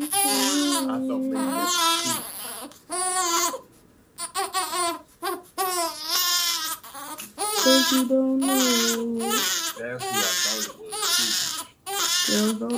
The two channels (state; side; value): identical; both; correlation 1.00